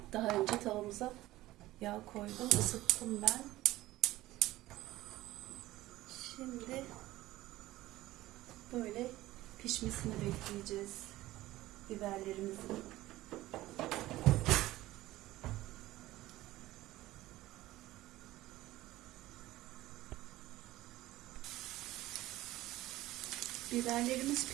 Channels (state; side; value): quieter; left; 16.7 dB